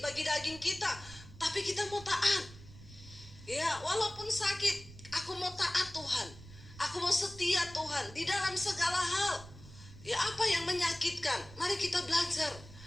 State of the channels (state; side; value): noise; right; rumble, 17 dB below the sound